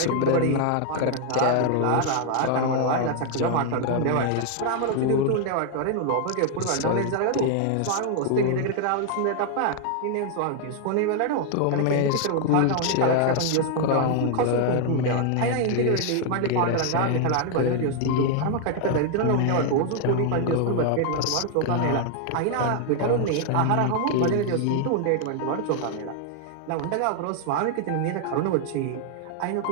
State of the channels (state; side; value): different; both; correlation 0.00